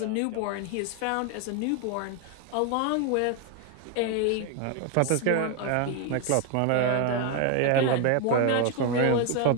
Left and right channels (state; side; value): different; both; correlation 0.01